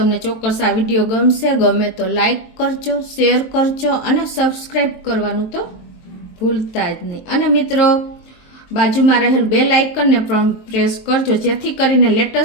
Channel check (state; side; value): late; right; 23 ms